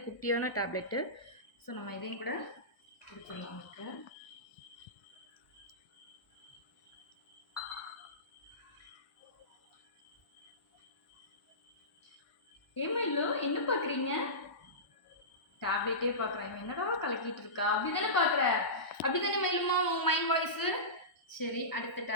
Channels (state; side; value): late; right; 1.0 ms